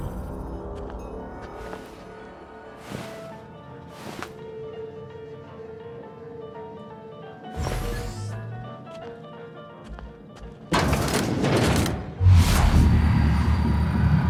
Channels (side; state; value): both; identical; correlation 1.00